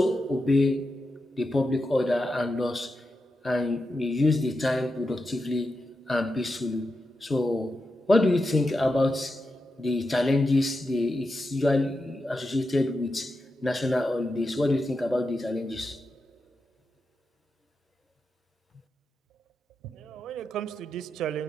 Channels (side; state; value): both; normal; correlation 0.88